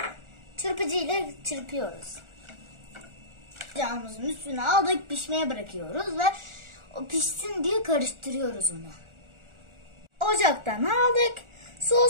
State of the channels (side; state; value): left; late; 1.4 ms